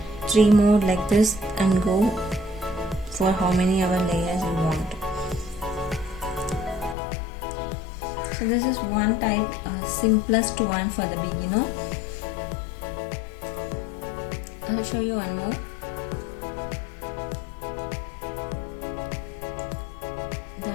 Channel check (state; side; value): drops out; right; at 7.0 s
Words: 3 more like this and go for how many other layers you want. So this is one type, simplest one for the beginner. I'll show you one more.